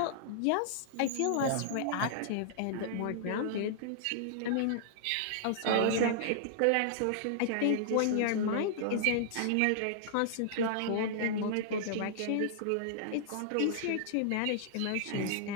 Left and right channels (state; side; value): different; both; correlation -0.01